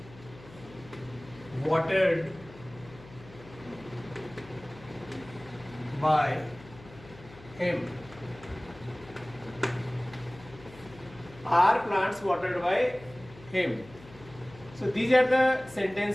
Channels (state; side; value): noise; left; hum, 20 dB below the sound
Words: watered by him? Are plants watered by him? So these are the